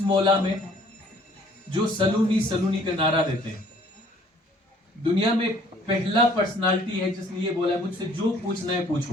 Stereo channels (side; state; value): both; normal; correlation 0.57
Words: मौला में जो सलूनी सलूनी का नारा देते हैं। दुनिया में पहला पर्सनालिटी है जिसने ये बोला है मुझसे जो पूछना है पूछो,